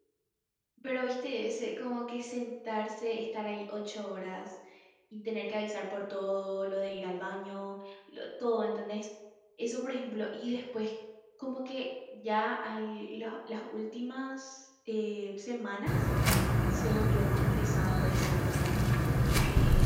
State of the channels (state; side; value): identical; both; correlation 1.00